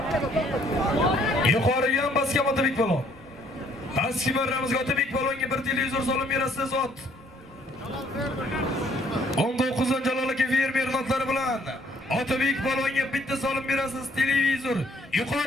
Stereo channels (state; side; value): normal; both; correlation 0.63